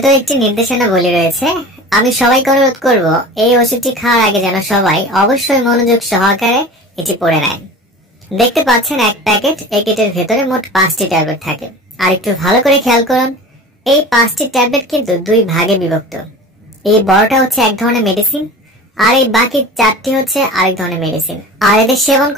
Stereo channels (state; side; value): normal; both; correlation 0.37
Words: একটি নির্দেশনাবলী রয়েছে। আমি সবাইকে অনুরোধ করব এই ওষুধটি খাওয়ার আগে যেন সবাই অবশ্যই মনোযোগ সহকারে এটি পড়ে নেয়। দেখতে পাচ্ছেন এক প্যাকেট একিডের ভেতরে মোট 5টি ট্যাবলেট থাকে। আর একটু ভালো করে খেয়াল করুন, এই 5টি ট্যাবলেট কিন্তু 2 ভাগে বিভক্ত। এই বড়টা হচ্ছে এক ধরনের মেডিসিন আর এই বাকি 4টি হচ্ছে আরেক ধরনের মেডিসিন। আর এদের সেবন